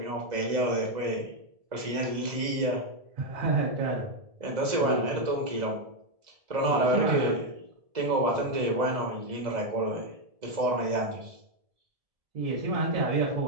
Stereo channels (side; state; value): left; late; 1.7 ms